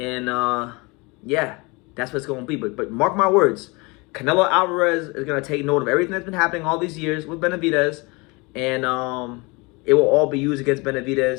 yeah, that's what it's going to be. But mark my words, Canelo Alvarez is going to take note of everything that's been happening all these years with Benavidez. And it will all be used against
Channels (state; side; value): quieter; right; 26.7 dB